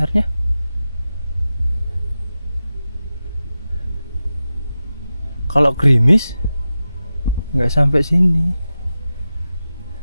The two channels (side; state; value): both; inverted; correlation -0.93